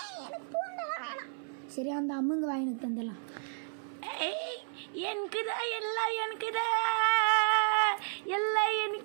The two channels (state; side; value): silent; left; 56 dB below the other